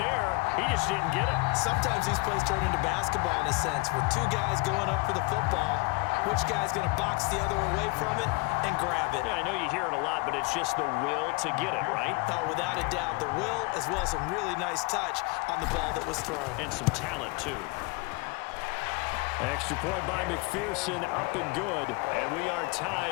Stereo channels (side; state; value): right; quieter; 26.1 dB